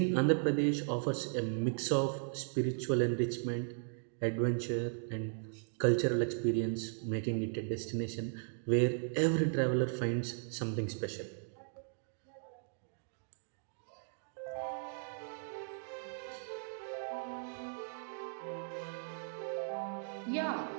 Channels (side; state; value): left; silent; digital silence